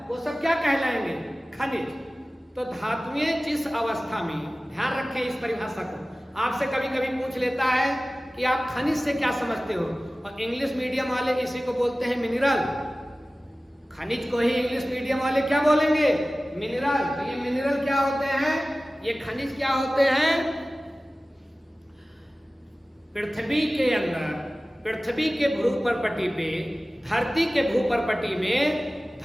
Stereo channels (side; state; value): both; normal; correlation 0.97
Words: वो सब क्या कहलाएंगे? खनिज। तो धातुएं जिस अवस्था में, ध्यान रखें इस परिभाषा को, आपसे कभी कभी पूछ लेता है कि आप खनिज से क्या समझते हो, और इंग्लिश मीडियम वाले इसी को बोलते हैं मिनरल। खनिज को ही इंग्लिश मीडियम वाले क्या बोलेंगे? मिनरल। तो ये मिनरल क्या होते हैं? ये खनिज क्या होते हैं? पृथ्वी के अंदर, पृथ्वी के भ्रूपटपटी पे धरती के भूपर्पटी में